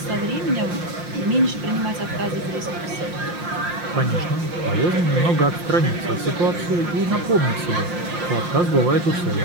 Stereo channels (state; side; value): late; left; 5.7 ms